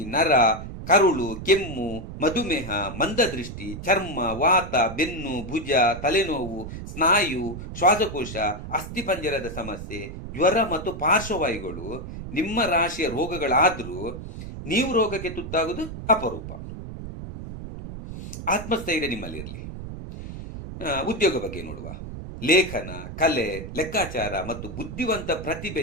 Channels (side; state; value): right; noise; rumble, 10 dB below the sound